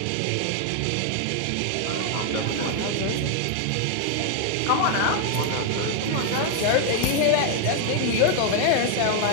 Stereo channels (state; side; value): different; both; correlation 0.00